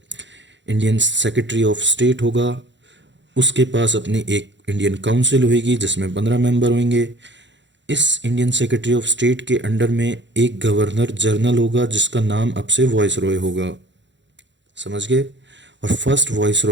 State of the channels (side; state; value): left; late; 0.53 ms